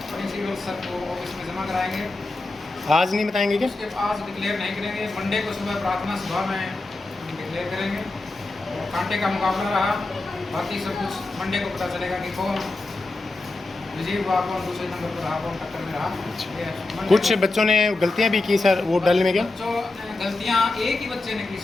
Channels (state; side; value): quieter; right; 3.1 dB